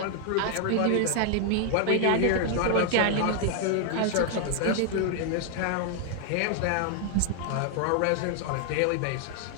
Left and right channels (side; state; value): both; different; correlation 0.00